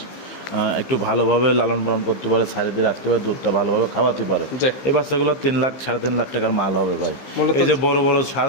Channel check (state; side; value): late; right; 15 ms